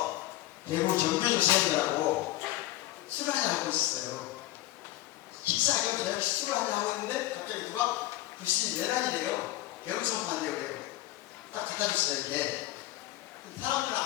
대구 정교조사회라고 술을 한잔 하고 있었어요. 식사 겸 저녁 술을 한잔 하고 있는데 갑자기 누가 글씨 내란이래요. 개울선판대요. 딱 갖다 줬어요. 이렇게 사람들은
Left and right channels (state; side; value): quieter; right; 15.8 dB